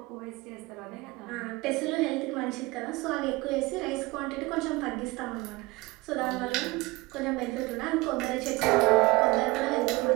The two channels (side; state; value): left; quieter; 22.5 dB